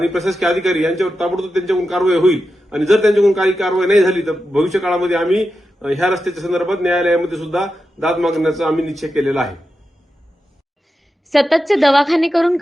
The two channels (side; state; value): both; normal; correlation 0.90